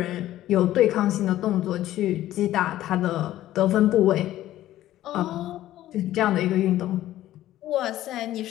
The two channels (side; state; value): right; quieter; 14.0 dB